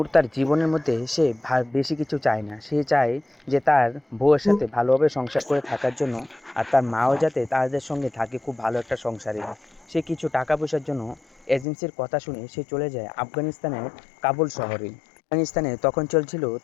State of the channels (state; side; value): drops out; right; at 11.7 s